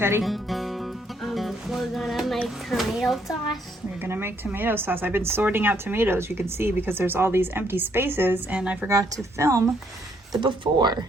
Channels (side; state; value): both; normal; correlation 0.70